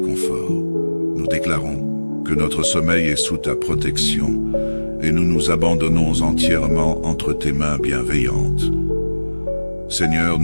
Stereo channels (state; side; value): inverted; both; correlation -1.00